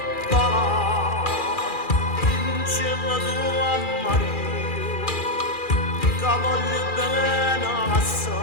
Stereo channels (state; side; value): late; right; 2.4 ms